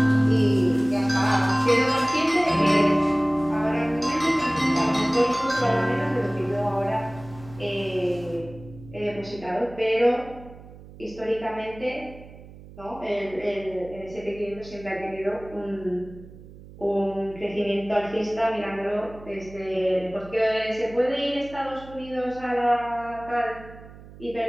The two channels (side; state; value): right; noise; hum, 18 dB below the sound